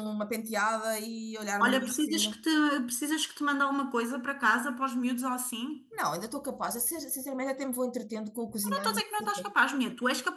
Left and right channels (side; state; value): both; identical; correlation 1.00